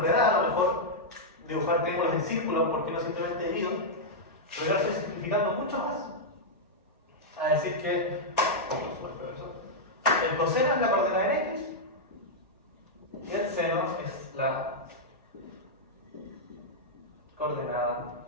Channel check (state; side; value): normal; both; correlation -0.06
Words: a lo mejor dibujar triángulos en círculos, porque no simplemente divido, pero yo lo estoy simplificando mucho más. A decir que el coseno es la coordenada en X y el seno es la coordenada